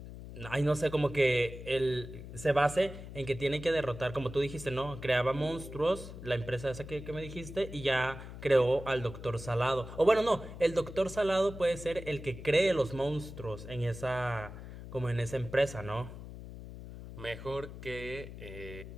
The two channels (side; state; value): left; noise; hum, 12 dB below the sound